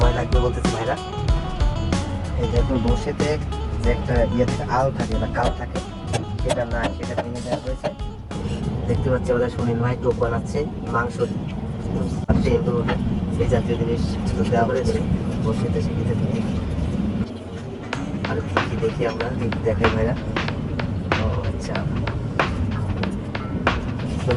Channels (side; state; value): both; identical; correlation 1.00